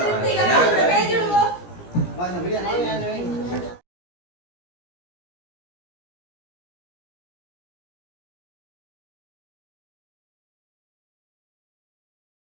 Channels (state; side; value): late; right; 17 ms